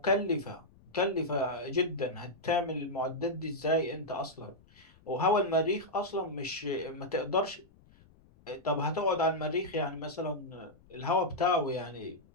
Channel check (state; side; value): noise; left; rumble, 27 dB below the sound